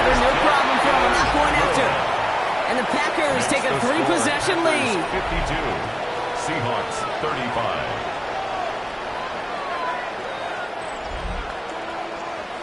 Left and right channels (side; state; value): both; identical; correlation 1.00